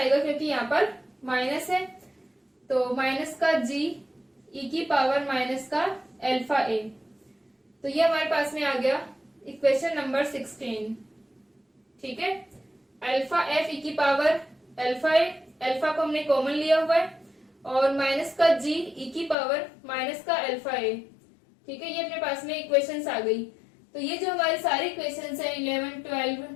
क्योंकि यहाँ पर माइनस है, तो माइनस का जी ई की पावर माइनस का अल्फा ए। तो ये हमारे पास में आ गया इक्वेशन नंबर 16। ठीक है, अल्फा एफ ई की पावर अल्फा ए, अल्फा को हमने कॉमन लिया हुआ है, और माइनस का जी ई की पावर माइनस का अल्फा ए। ठीक है, ये अपने पास में इक्वेशंस आ गई। तो ये जो हमारी सारी इक्वेशंस है 11, 12,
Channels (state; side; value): drops out; right; at 19.4 s